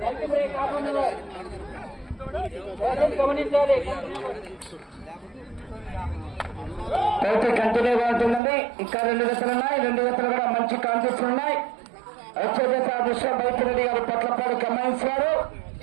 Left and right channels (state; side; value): drops out; left; at 8.4 s